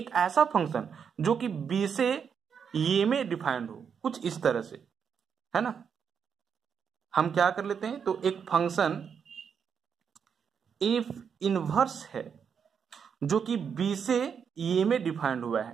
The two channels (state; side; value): quieter; left; 7.0 dB